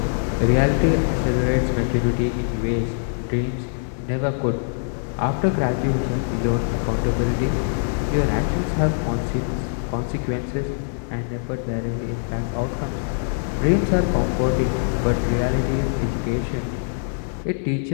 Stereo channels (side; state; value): right; silent; 57 dB below the other